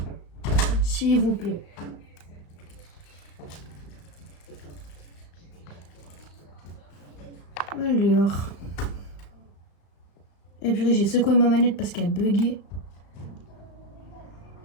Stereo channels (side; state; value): right; late; 35 ms